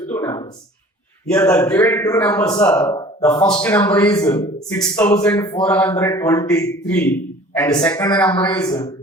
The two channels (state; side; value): normal; both; correlation 0.47